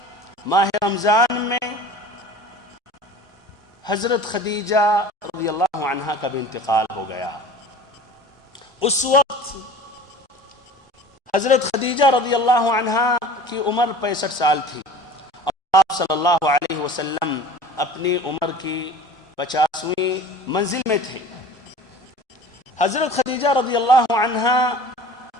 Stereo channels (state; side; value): normal; both; correlation 0.41